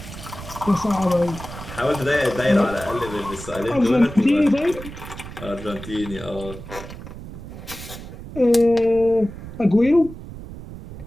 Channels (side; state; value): right; noise; rumble, 12 dB below the sound